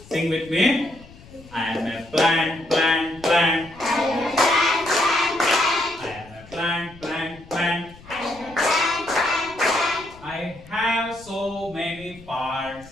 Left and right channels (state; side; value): noise; left; rumble, 21 dB below the sound